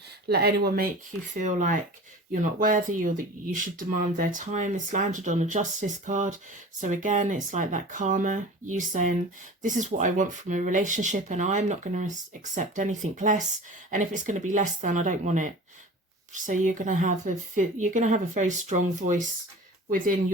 let anyone make you feel like you're not worthy or that you should demand their time. It's landed on a justice card. So again, it's like that karma, you saying, this is what I want from a relationship and I'm not going to accept anything less. And if it's going to be less than, I don't want it. So you're going to have a very strong voice within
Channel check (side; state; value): both; normal; correlation 0.38